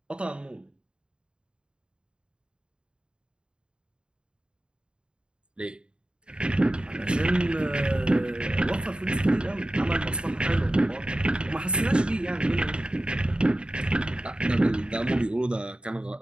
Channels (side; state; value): left; late; 0.052 ms